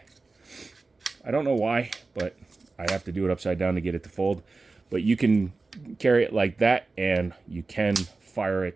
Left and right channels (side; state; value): left; quieter; 3.7 dB